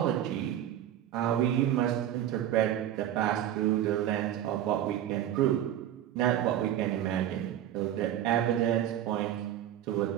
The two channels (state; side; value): quieter; left; 11.5 dB